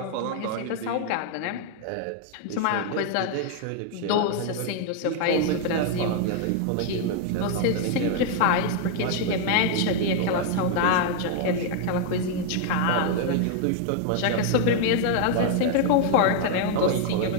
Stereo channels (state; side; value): different; both; correlation 0.00